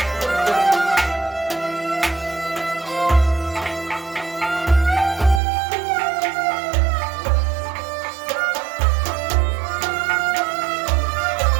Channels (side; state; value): left; drops out; at 5.4 s